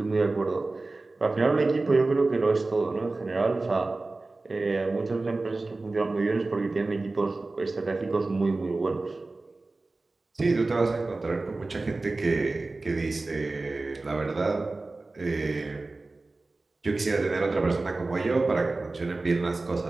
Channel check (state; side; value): quieter; left; 3.3 dB